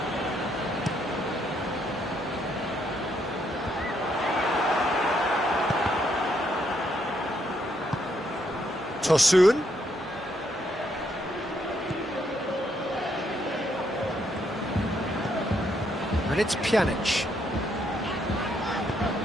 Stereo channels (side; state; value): both; normal; correlation 0.74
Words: Tosun. And it's Pjanic.